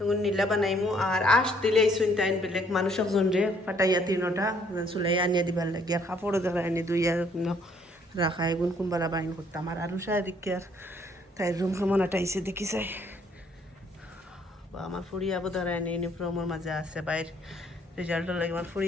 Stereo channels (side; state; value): both; normal; correlation 0.64